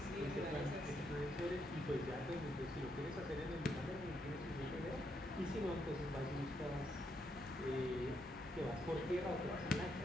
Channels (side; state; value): both; normal; correlation 0.78